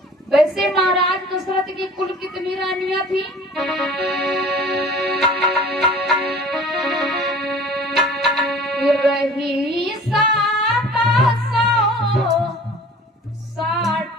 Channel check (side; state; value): both; normal; correlation 0.45